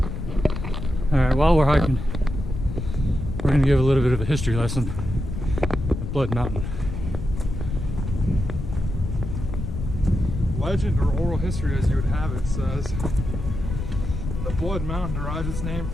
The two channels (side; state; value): left; noise; rumble, 5 dB below the sound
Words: Alright, while we're hiking, we're going to give a little bit of a history lesson at Blood Mountain. Legend or oral history, as you would have it, says the Blood Mountain derives its name